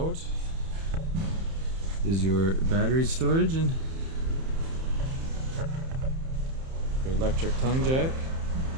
is your battery storage and your electric tongue jack,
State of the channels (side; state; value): left; late; 31 ms